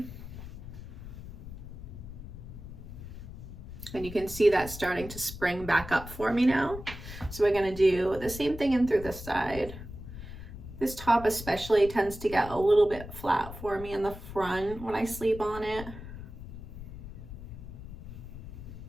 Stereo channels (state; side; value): noise; left; rumble, 12 dB below the sound